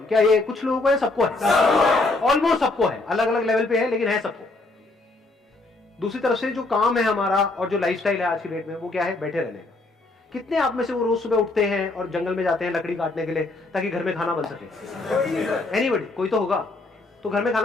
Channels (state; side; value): quieter; right; 3.1 dB